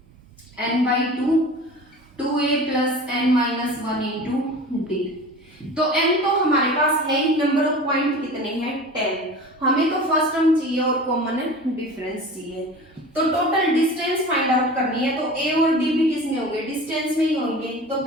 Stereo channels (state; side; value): normal; both; correlation 0.37